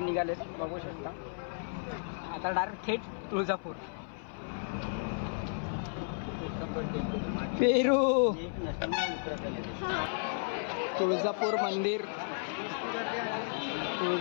बघू शकता. आता डायरेक्ट थेट तुळजापूर. पेरू तुळजापूर मंदिर,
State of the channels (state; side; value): silent; right; 55 dB below the other